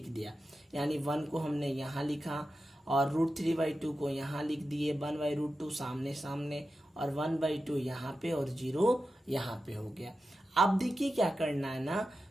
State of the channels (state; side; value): normal; both; correlation 0.92